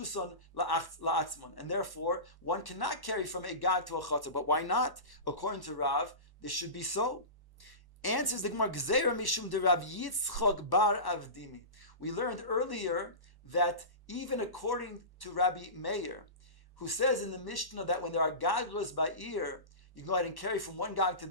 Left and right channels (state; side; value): late; right; 1.1 ms